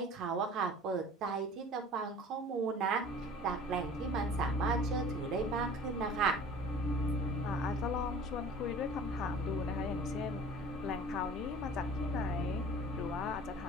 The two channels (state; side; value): normal; both; correlation 0.44